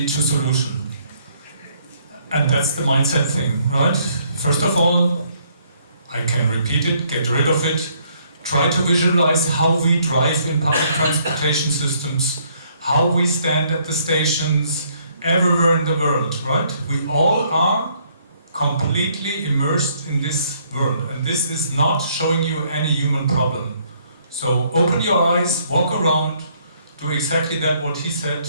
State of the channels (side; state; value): both; inverted; correlation -0.67